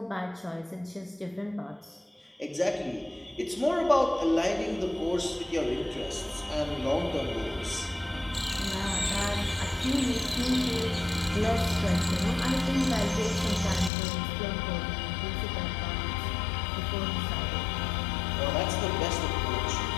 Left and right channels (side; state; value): right; drops out; at 13.9 s